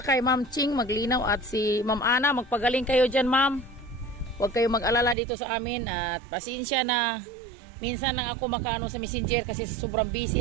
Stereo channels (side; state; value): left; drops out; at 5.2 s